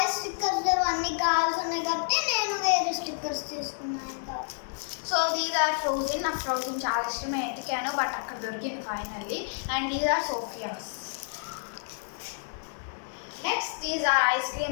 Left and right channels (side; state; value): right; silent; digital silence